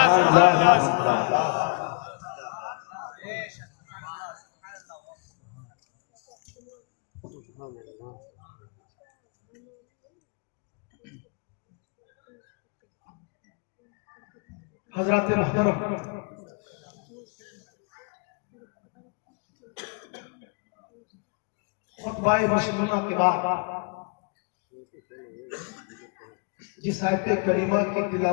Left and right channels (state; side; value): quieter; right; 33.9 dB